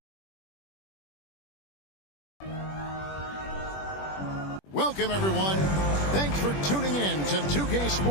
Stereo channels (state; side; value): late; right; 21 ms